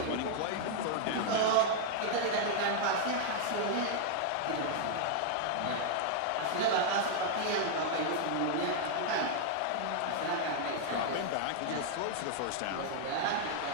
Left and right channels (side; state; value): both; different; correlation 0.00